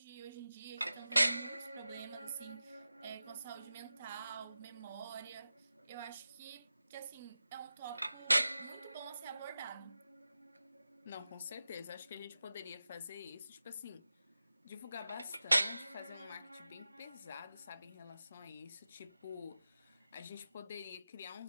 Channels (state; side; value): inverted; both; correlation -0.92